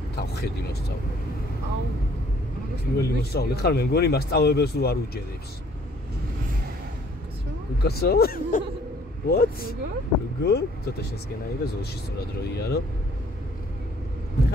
თავხედი მოსწავლე. აუ, პირველი მოსწავლე ხარ, მე მგონი მასწავლებელს რო არ უჯერებს. უკაცო? What? Good? ცოტა შესკენაირა ზოლში სწორად რო იარო.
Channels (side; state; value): both; normal; correlation 0.58